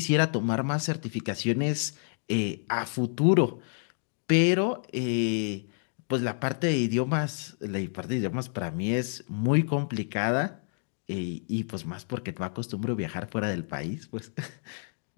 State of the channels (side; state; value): right; silent; digital silence